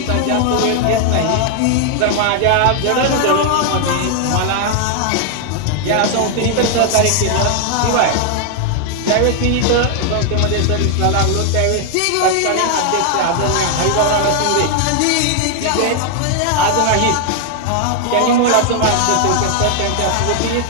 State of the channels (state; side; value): different; both; correlation 0.00